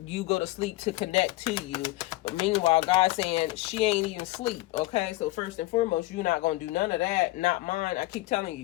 you go to sleep to connect to you. But meanwhile, God's saying she ain't even sleep. Okay, so first and foremost, you're not going to do none of that. Not mine. I keep telling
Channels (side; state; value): right; quieter; 19.3 dB